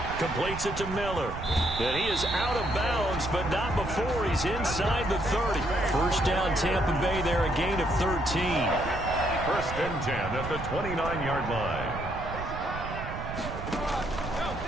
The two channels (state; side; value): noise; right; rumble, 8 dB below the sound